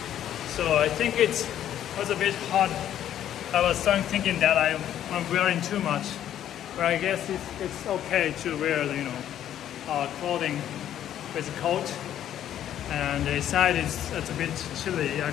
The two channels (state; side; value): quieter; right; 11.0 dB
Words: So I think it was a bit hot. I was thinking that I'm wearing too much. But I guess it's okay to wear, clothing with a coat. And inside it's a bit chilly